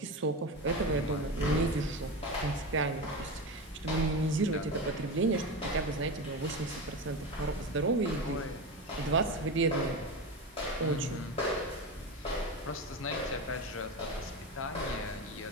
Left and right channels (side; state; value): both; normal; correlation 0.22